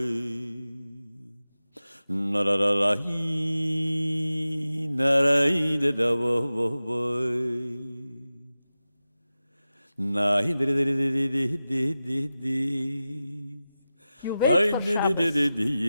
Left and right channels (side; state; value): both; inverted; correlation -0.94